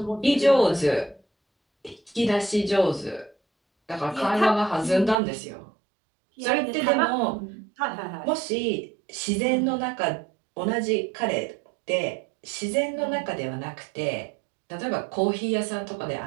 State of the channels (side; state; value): left; drops out; at 5.2 s